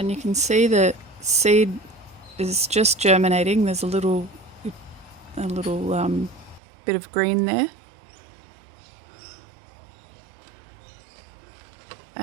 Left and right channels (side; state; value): left; drops out; at 6.6 s